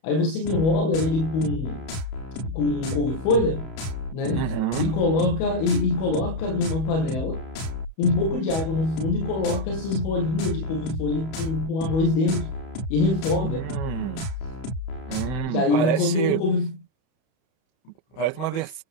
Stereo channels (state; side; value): late; right; 31 ms